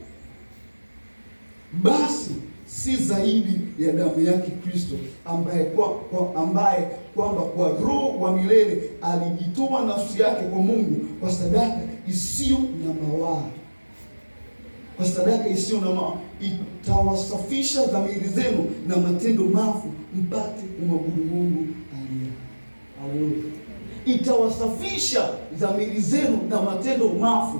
basi si zaidi ya damu yake Kristo, ambaye kwamba kwa Roho wa milele alijitoa nafsi yake kwa Mungu kwa sadaka isiyo na mawaa. Kwa sadaka isiyo na mawaa, itawasafisha dhamiri zenu na matendo mafu, mpate kumwabudu Mungu aliye hai. Haleluya. Itawasafisha dhamiri zenu na matendo mafu,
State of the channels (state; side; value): inverted; both; correlation -1.00